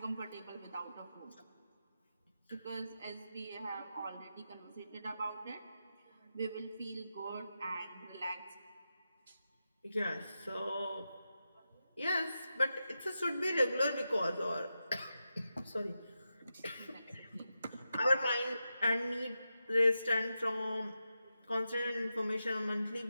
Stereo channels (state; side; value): inverted; both; correlation -0.89